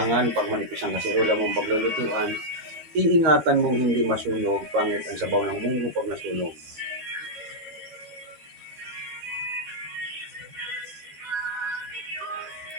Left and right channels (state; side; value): late; left; 13 ms